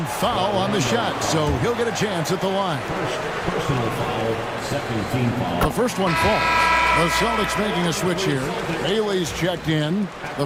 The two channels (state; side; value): identical; both; correlation 1.00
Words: foul on the shot, so he'll get a chance at the line. First personal foul. Second team foul. The first one falls. The Celtics making a switch here. Bailey's checked in. The